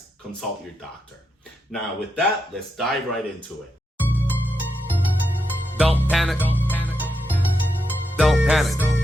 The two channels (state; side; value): normal; both; correlation 0.84